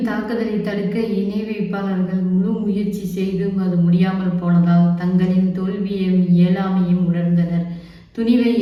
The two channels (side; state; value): both; identical; correlation 1.00